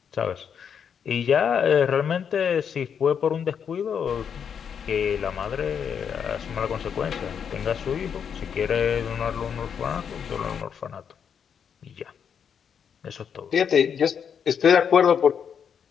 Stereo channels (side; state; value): right; quieter; 7.5 dB